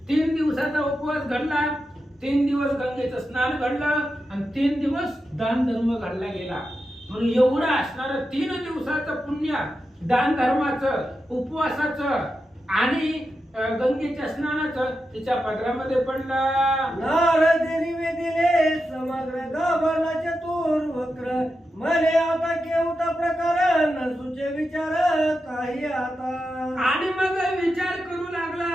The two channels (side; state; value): both; normal; correlation 0.89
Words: 3 दिवसाचा उपवास घडला. 3 दिवस गंगेचं स्नान घडलं आणि 3 दिवस दान धर्म घडला गेला. म्हणून एवढं असणारं 3 दिवसाचं पुण्य दान धर्माचं, उपवासाचं आणि गंगेच्या स्नानाचं तिच्या पदरामध्ये पडलं. नारदेनी वेदिले समग्र गाभारला चतुर वक्र मले आता केवता प्रकार न सुचे विचार काही आता. आणि मग विचार करू लागला